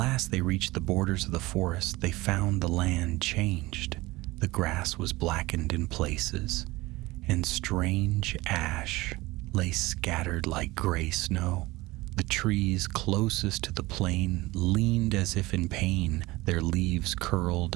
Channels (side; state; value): left; quieter; 20.4 dB